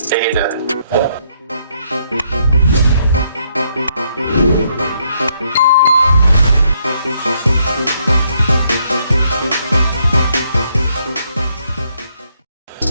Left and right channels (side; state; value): both; inverted; correlation -0.73